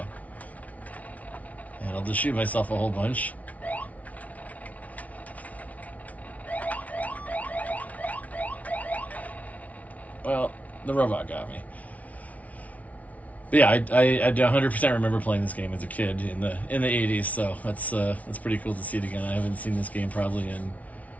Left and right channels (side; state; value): right; late; 0.069 ms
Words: And I'll just shoot myself a whole bunch. Well, the robot got me. But yeah, I 100% remember playing this game as a kid in the 80s, so that's pretty cool to see it again. I haven't seen this game probably in,